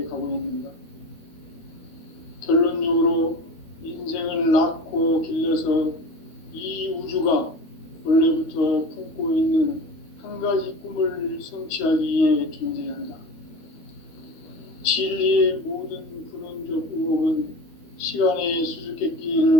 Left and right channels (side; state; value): right; late; 13 ms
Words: 가고 있는가? 결론적으로 인생을 낳고 길러서 이 우주가 원래부터 품고 있는 한 가지 꿈을 성취하기 위해 존재한다. 진리의 모든 근원적 의혹은 시간의